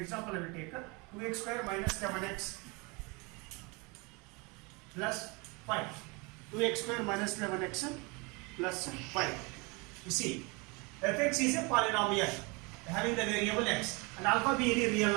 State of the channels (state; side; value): quieter; left; 28.4 dB